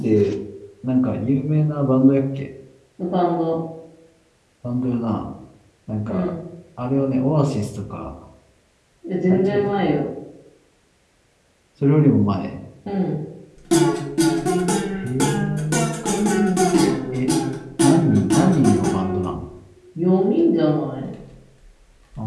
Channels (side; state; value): both; identical; correlation 1.00